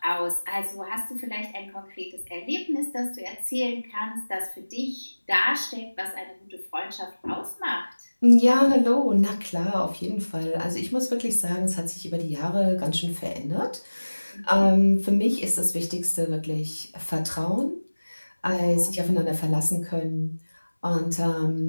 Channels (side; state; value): both; inverted; correlation -1.00